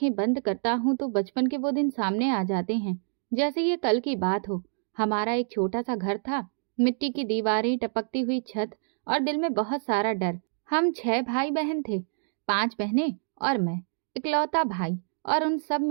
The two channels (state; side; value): silent; left; digital silence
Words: बंद करता हूँ तो बचपन के वो दिन सामने आ जाते हैं, जैसे ये कल की बात हो। हमारा एक छोटा सा घर था, मिट्टी की दीवारें, टपकती हुई छत और दिल में बहुत सारा डर। हम 6 भाई बहन थे, 5 बहनें और मैं, इकलौता भाई, और उन सब